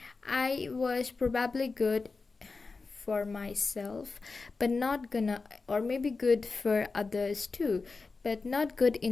I was probably good for myself, but not gonna, or maybe good for others too, but not good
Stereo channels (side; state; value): right; quieter; 4.1 dB